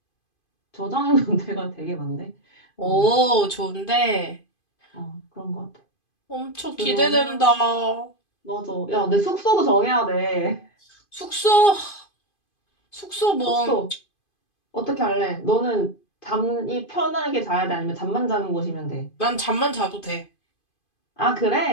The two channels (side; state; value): right; late; 2.5 ms